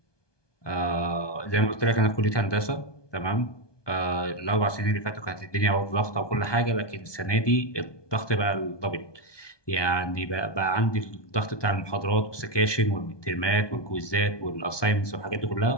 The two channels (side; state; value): right; late; 1.2 ms